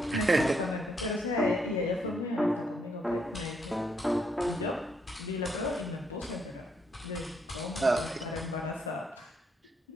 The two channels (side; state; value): both; normal; correlation 0.75